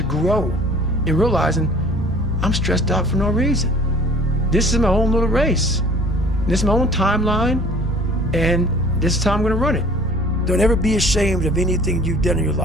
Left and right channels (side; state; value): both; normal; correlation 0.49